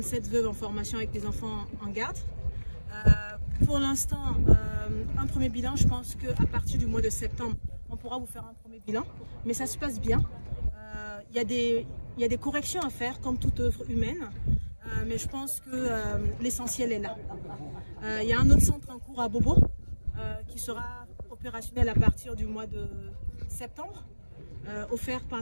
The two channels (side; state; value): both; inverted; correlation -1.00